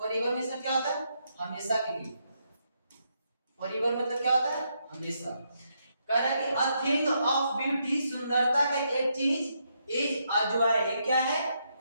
मींस क्या होता है? हमेशा के लिए। फॉरएवर मतलब क्या होता है? हमेशा। कह रहा है कि अ थिंग ऑफ ब्यूटी, सुंदरता का एक चीज, इज अ जॉय, क्या है?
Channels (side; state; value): both; inverted; correlation -0.79